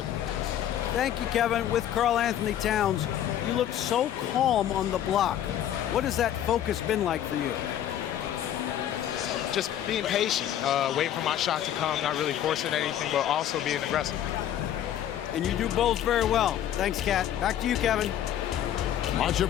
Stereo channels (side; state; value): right; quieter; 10.9 dB